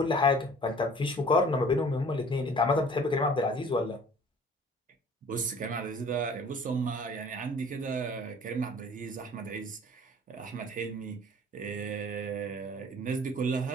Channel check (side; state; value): both; normal; correlation 0.50